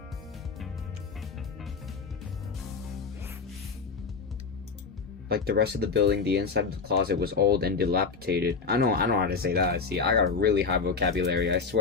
Like the rest of the building, the inside of the closet was old and dilapidated. I know how to say that. See, I got a really high vocabulary, I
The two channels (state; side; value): quieter; right; 4.9 dB